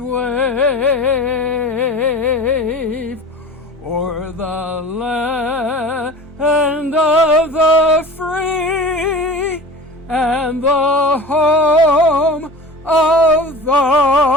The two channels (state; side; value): normal; both; correlation 0.36